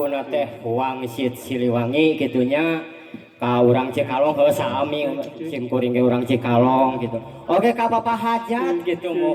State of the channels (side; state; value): both; identical; correlation 1.00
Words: teh Wangsit Siliwangi kitunya ka urang Cikalong heuh sami sim kuring ge urang Cikalong gitu. Oke ka Bapak Hajat gitu